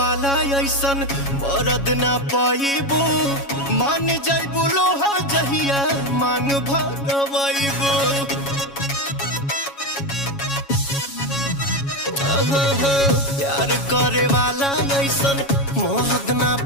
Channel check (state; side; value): late; right; 7.2 ms